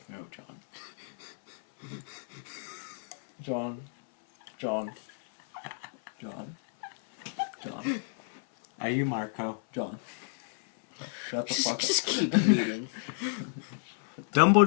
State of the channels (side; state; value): right; silent; 57 dB below the other